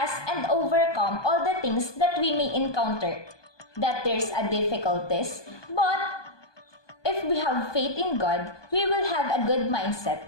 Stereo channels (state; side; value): late; right; 1.2 ms